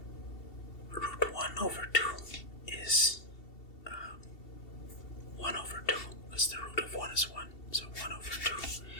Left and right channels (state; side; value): late; right; 2.7 ms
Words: Root 1 over 2 is 1 over 2, because the root of 1 is 1, so 1 over 2.